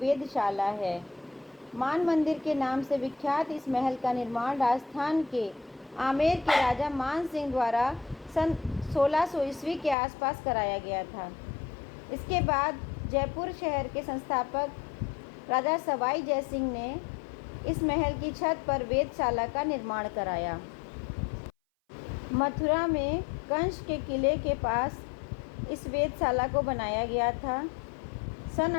है। मान मंदिर के नाम से विख्यात इस महल का निर्माण राजस्थान के आमेर के राजा मान सिंह द्वारा सन 1600 ईस्वी के आसपास कराया गया था। इसके बाद जयपुर शहर के संस्थापक राजा सवाई जयसिंह ने इस महल की छत पर वेधशाला का निर्माण कराया। मथुरा में कंस के किले के पास इस वेधशाला को बनाया गया था। सन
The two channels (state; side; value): drops out; right; at 10.0 s